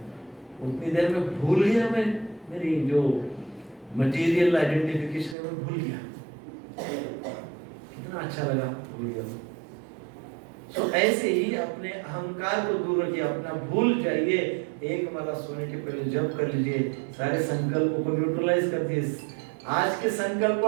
उतनी देर में भूल गया मैं, मेरी जो मटेरियल आइडेंटिफिकेशन है मैं भूल गया। कितना अच्छा लगा, भूल गया। सो ऐसे ही अपने अहंकार को दूर रखिए, अपना भूल जाइए। एक माला सोने के पहले जप कर लीजिए, सारे संकल्पों को न्यूट्रलाइज कर दीजिए। आज के संकल्प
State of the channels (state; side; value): drops out; left; at 5.4 s